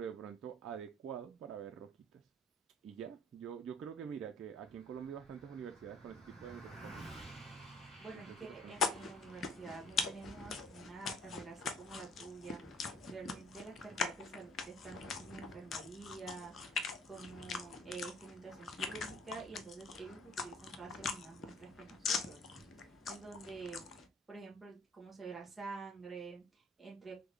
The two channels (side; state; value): both; normal; correlation 0.55